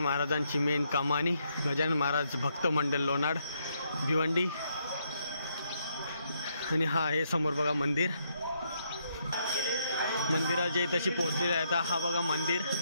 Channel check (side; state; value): both; inverted; correlation -0.76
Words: महाराजांची मेन कमानी, गजानन महाराज भक्त मंडळ लोणाड भिवंडी. आणि हा आहे समोर बघा मंदिर. मंदिराच्या इथेशी पोहोचलेले आहेत. हा बघा मंदिर,